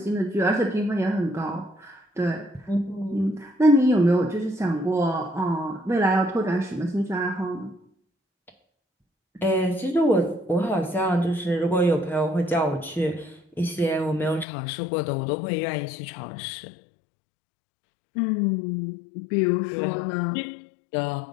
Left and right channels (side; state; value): right; drops out; at 14.5 s